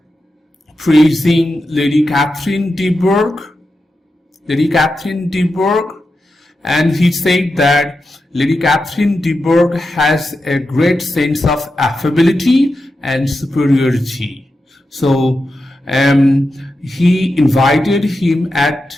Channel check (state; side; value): normal; both; correlation 0.89